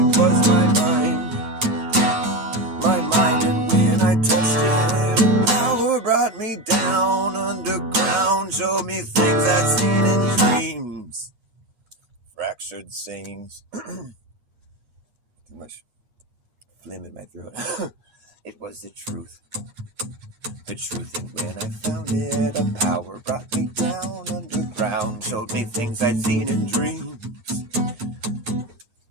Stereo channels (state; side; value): late; left; 8.4 ms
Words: was my mind. My mind, and when I touched it, a power brought me down underground, showed me things I'd seen in dreams. Fractured sayings. Too much phlegm in my throat. It was the truth. The truth, and when I found it, a power brought me down underground, showed me things I'd seen in dreams.